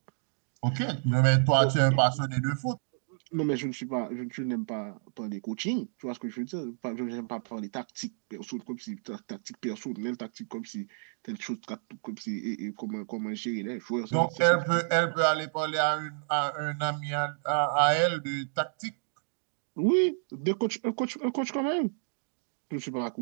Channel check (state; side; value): silent; left; digital silence